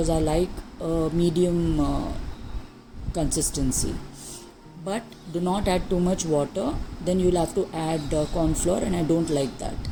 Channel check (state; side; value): identical; both; correlation 1.00